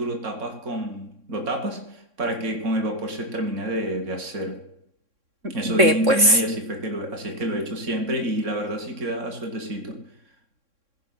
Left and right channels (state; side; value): late; left; 3.6 ms